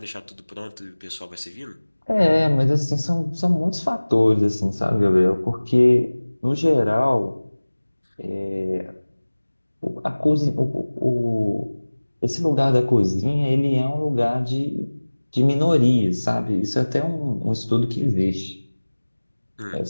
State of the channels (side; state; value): both; inverted; correlation -1.00